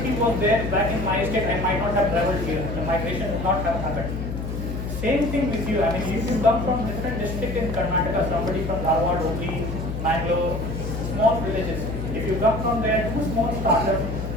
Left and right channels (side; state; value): left; noise; hum, 5 dB below the sound